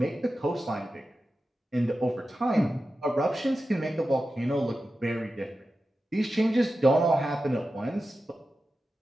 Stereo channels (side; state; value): both; normal; correlation 0.92